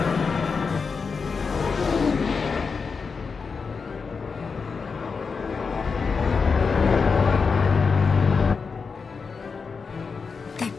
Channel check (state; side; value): quieter; right; 5.1 dB